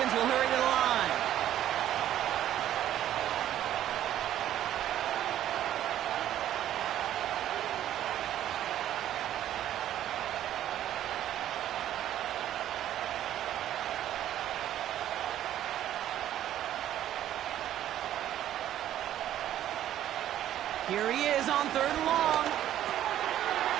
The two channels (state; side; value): quieter; left; 11.9 dB